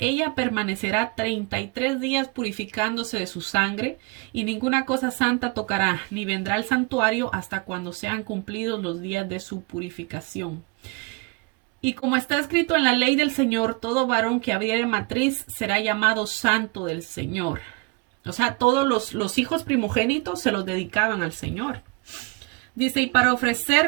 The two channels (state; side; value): quieter; left; 27.6 dB